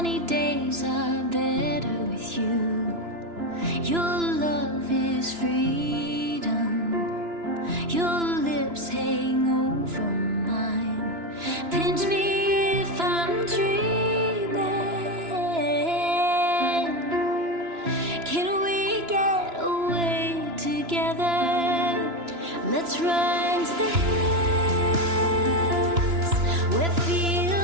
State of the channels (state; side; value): late; left; 2.9 ms